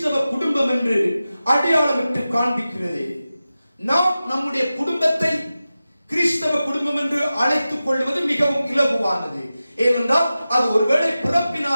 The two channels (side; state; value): both; inverted; correlation -0.94